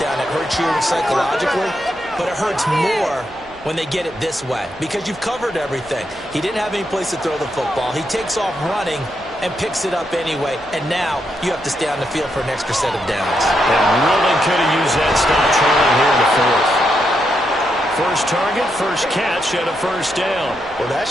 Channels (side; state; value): right; noise; hum, 26 dB below the sound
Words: it hurts you psychologically, but it hurts more when they get it this way because you've covered everything. He didn't have any place to throw the football. He takes off running and picks it up anyway, and now you have to stay on the field for an extra set of downs. And really could have used that stop trailing here in the 4th. First target, first catch, and a first down. Well, that